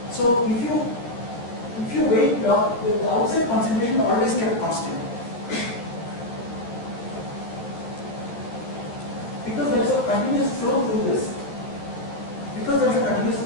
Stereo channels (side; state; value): right; late; 13 ms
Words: So if you wait, the outside concentration always kept constant. Because there is a continuous flow through this. Because there is a continuous